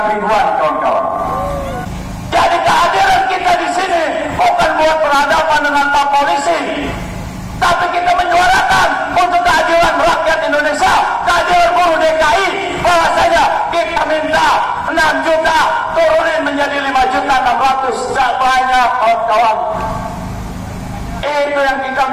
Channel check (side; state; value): both; identical; correlation 1.00